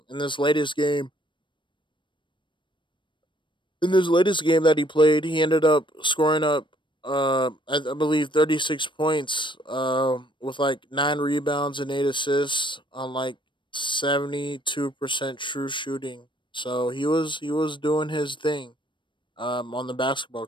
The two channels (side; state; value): right; late; 0.23 ms